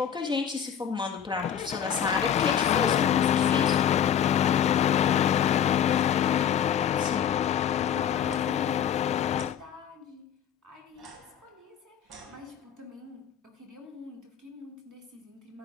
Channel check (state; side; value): quieter; right; 8.9 dB